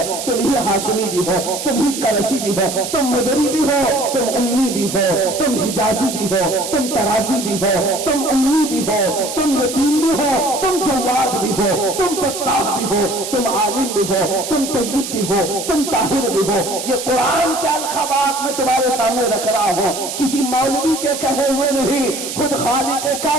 تم ہی ہاشمی بھی ہو، تم ہی قریشی بھی ہو، تم مدری بھی ہو، تم امی بھی ہو، تم حجازی بھی ہو، تم ترازی بھی ہو، تم امی بھی ہو، تم یتیم بھی ہو، تم جواد بھی ہو، تم فتاح بھی ہو، تم عالم بھی ہو، تم طیب بھی ہو، تم طاہر بھی ہو۔ یہ قرآن کے الخبات میں تمہارے سامنے رکھ رہا ہوں، کسی مولوی کے کہے ہوئے نہیں، خود خالق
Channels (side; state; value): right; noise; hiss, 7 dB below the sound